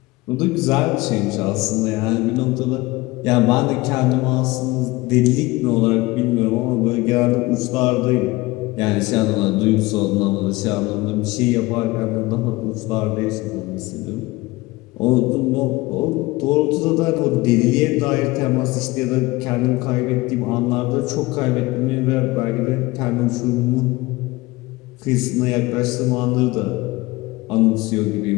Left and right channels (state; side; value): quieter; right; 21.1 dB